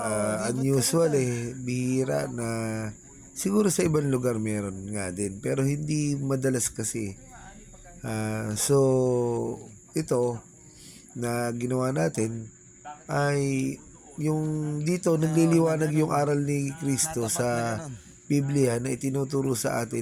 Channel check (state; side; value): identical; both; correlation 1.00